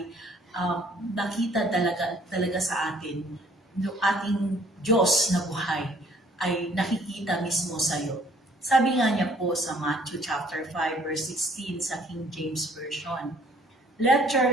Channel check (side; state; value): both; normal; correlation 0.59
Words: nakita talaga sa atin yung ating Diyos na buhay ay nakikita mismo sa iyo. Sabi nga niya po sa Matthew chapter 5 verse 16 sa King James Version, "Let your